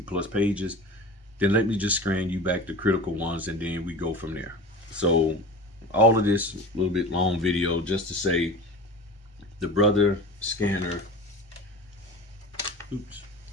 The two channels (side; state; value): both; normal; correlation 0.35